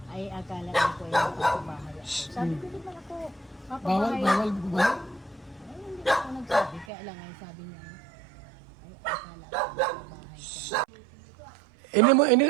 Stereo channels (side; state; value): left; drops out; at 6.9 s